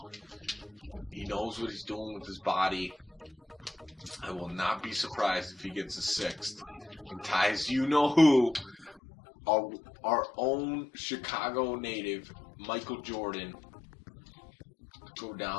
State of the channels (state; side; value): drops out; right; at 9.0 s